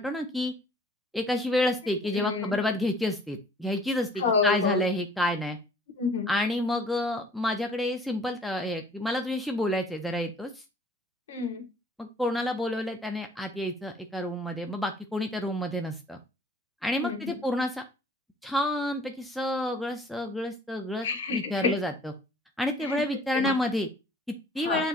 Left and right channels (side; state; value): both; normal; correlation 0.53